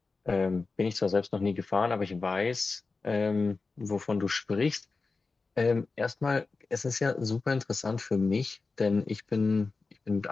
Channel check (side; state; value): right; quieter; 4.0 dB